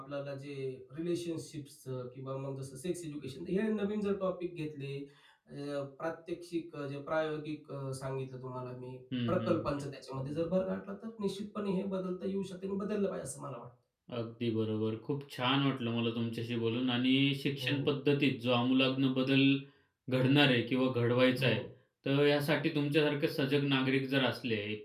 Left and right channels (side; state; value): both; identical; correlation 1.00